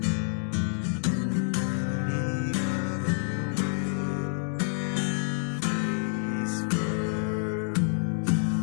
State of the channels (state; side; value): silent; right; digital silence